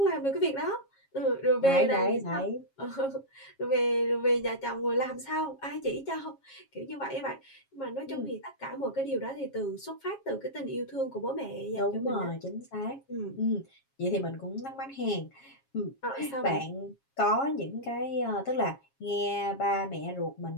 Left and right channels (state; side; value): late; right; 7.4 ms